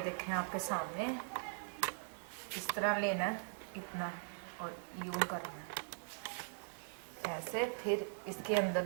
आपके सामने, इस तरह लेना है इतना और यूं करना है ऐसे। फिर इसके अंदर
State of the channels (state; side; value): silent; left; digital silence